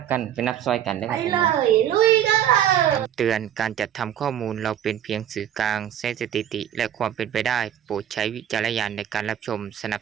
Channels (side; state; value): left; quieter; 10.5 dB